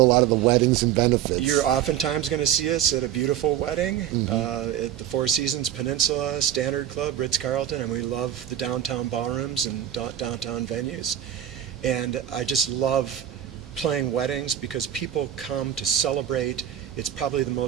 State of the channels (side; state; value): left; quieter; 10.8 dB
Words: a lot of the weddings and benefits. You're oftentimes going to see us at a beautiful wedding at the Four Seasons Peninsula, Standard Club, Ritz-Carlton, and we love the downtown ballrooms and downtown venues. And I just love playing weddings because people come to celebrate. It's probably the